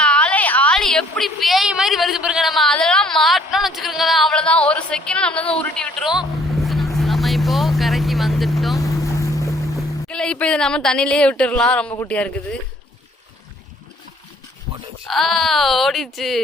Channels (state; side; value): normal; both; correlation 0.60